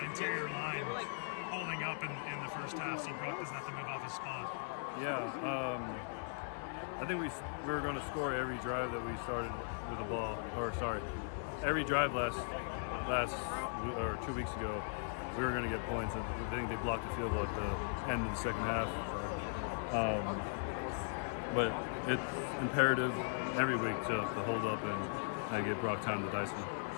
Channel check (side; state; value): right; silent; 52 dB below the other